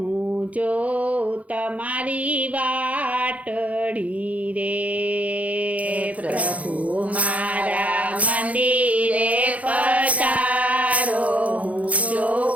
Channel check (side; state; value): left; late; 0.068 ms